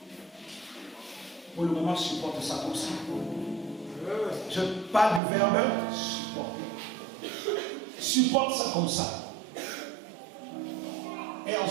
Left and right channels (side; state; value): left; drops out; at 5.2 s